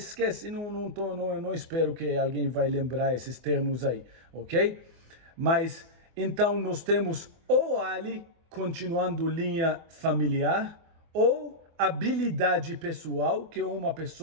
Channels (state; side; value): late; left; 24 ms